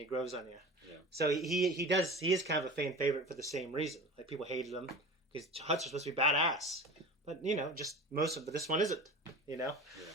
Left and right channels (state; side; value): normal; both; correlation 0.35